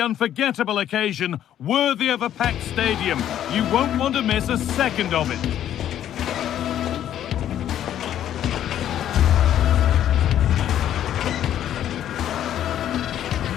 occasion, worthy of a packed stadium. You won't want to miss a second of it.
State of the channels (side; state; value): right; quieter; 11.0 dB